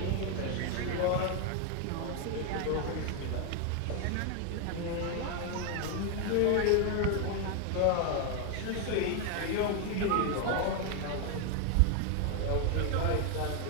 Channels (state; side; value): different; both; correlation 0.01